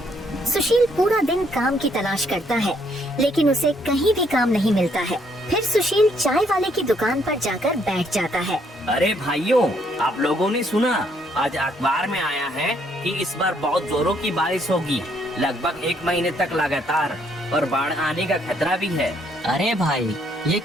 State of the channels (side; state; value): both; normal; correlation 0.69